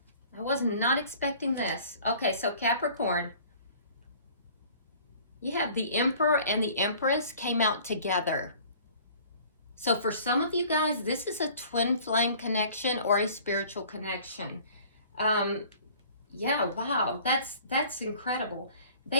I was not expecting this. Okay, so Capricorn, you have the Emperor and the Empress came out together. So for some of you guys, this is a twin flame connection or a spiritual connection. Yeah, wow, that's incredible.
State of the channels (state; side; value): inverted; both; correlation -0.50